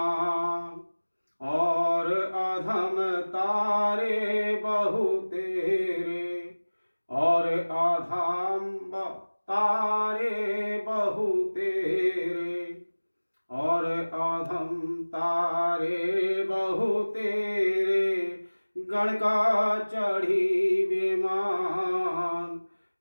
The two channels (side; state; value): both; inverted; correlation -1.00